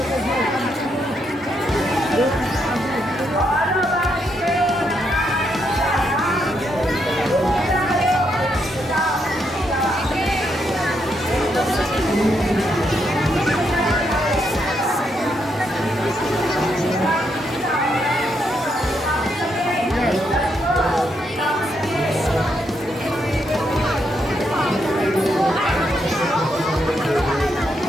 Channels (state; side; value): normal; both; correlation 0.78